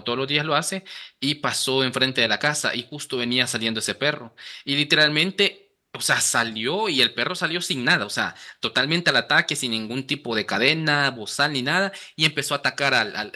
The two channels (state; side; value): identical; both; correlation 1.00